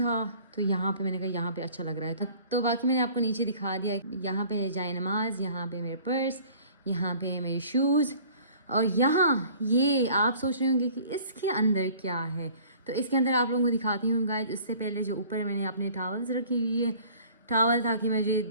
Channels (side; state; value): both; inverted; correlation -0.50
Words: तो यहाँ पे मैंने कहा यहाँ पे अच्छा लग रहा है। तो बाकी मैंने आपको नीचे दिखा दिया। यहाँ पे है जाए नमाज, यहाँ पे मेरे पर्स, यहाँ पे है मेरे शूज़, और यहाँ ये आप सोच रहे होंगे कि इसके अंदर क्या है। तो इसके अंदर आप लोगों को दिखाती हूँ गाइस। उससे पहले जो ऊपर मैंने अपने टॉवल्स रखी हुई है, टॉवल ताकि मुझे